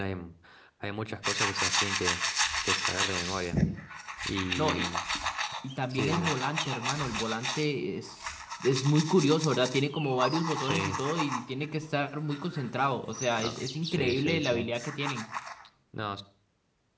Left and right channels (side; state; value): both; identical; correlation 1.00